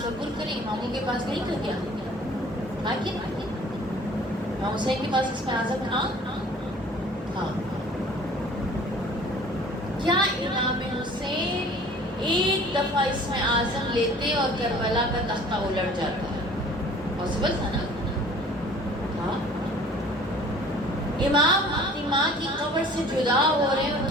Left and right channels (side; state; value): both; normal; correlation 0.49